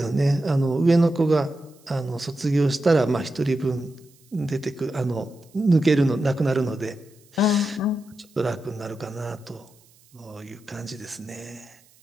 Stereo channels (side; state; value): right; noise; hiss, 30 dB below the sound